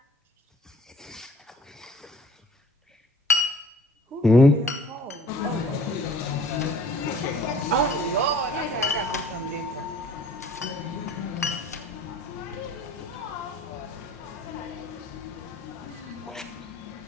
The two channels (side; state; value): both; normal; correlation 0.51